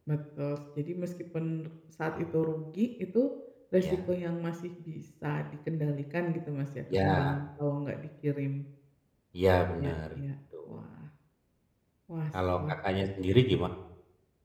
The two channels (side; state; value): both; identical; correlation 1.00